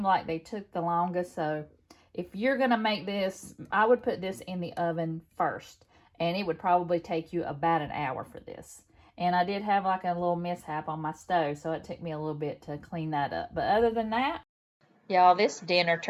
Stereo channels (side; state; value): both; identical; correlation 1.00